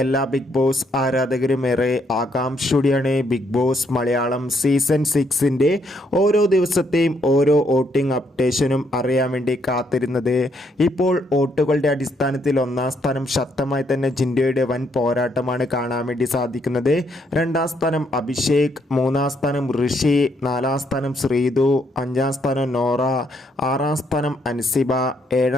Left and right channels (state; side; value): normal; both; correlation 0.73